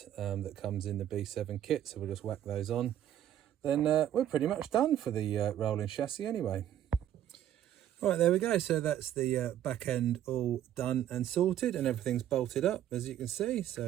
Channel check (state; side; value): quieter; left; 11.3 dB